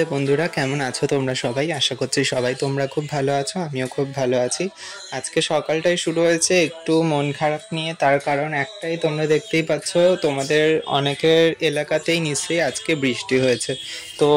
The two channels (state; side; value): identical; both; correlation 1.00